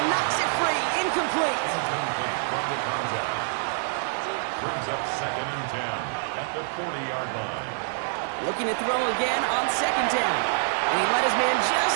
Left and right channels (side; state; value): left; silent; digital silence